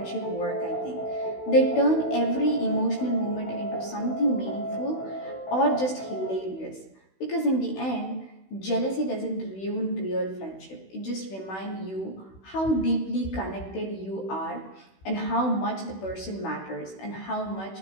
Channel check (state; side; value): late; right; 16 ms